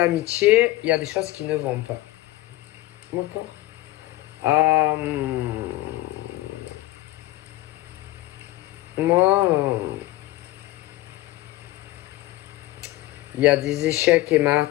il y a des choses qui ne vont pas. D'accord? Moi, il y a des échecs et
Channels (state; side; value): quieter; right; 16.8 dB